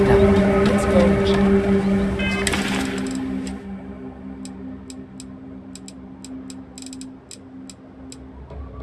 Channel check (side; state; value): both; identical; correlation 1.00